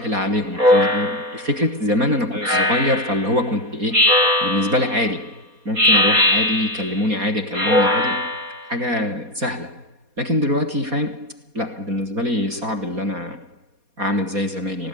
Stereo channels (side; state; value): left; late; 4.2 ms